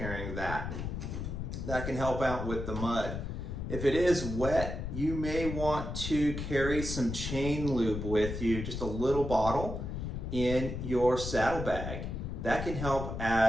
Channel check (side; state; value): left; noise; rumble, 5 dB below the sound